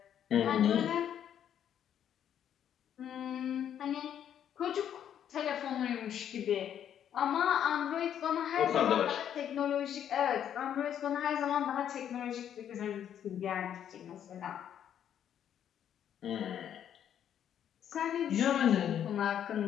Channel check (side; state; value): right; quieter; 9.6 dB